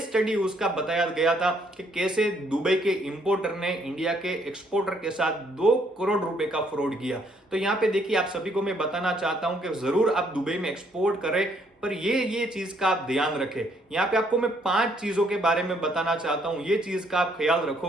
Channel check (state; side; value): normal; both; correlation 0.68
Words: स्टडी उसका बताया गया था कि कैसे दुबई के इंपोर्टर ने इंडिया के एक्सपोर्टर के साथ 2 करोड़ रुपए का फ्रॉड किया। तो यहाँ पे देखिए, आप सभी को मैं बताना चाहता हूं कि जरूर आप दुबई में एक्सपोर्ट करें, पर ये चीज का आप ध्यान रखें। यहाँ पे आपको मैं 5 चीजों के बारे में बताना चाहता हूं, ये चीज का आप ख्याल